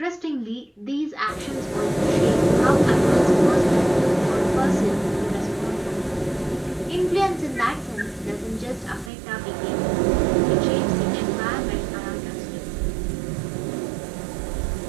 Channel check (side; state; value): left; drops out; at 9.1 s